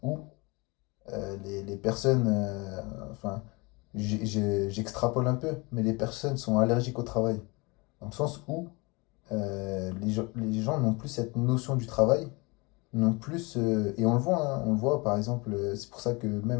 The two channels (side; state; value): right; quieter; 26.8 dB